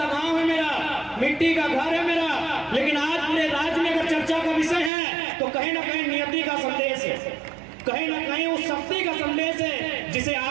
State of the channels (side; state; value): left; drops out; at 4.9 s